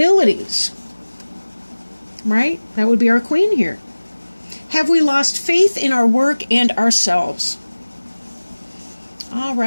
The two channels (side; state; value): both; inverted; correlation -1.00